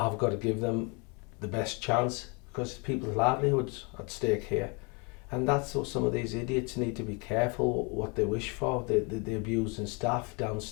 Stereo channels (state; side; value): quieter; right; 31.9 dB